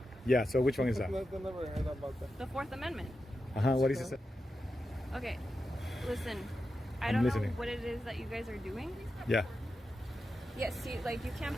Yeah. So which one is that? I never heard about that. the Fourth Amendment. What is it? Okay, listen, I I'm don't listening. know what it is that you guys are doing. Yeah. Yeah, see, like you can't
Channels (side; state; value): both; normal; correlation 0.89